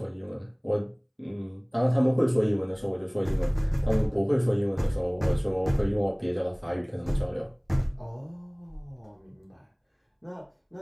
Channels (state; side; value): identical; both; correlation 1.00